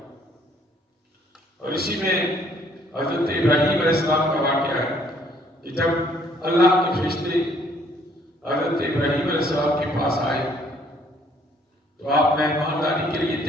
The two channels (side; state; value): both; normal; correlation 0.63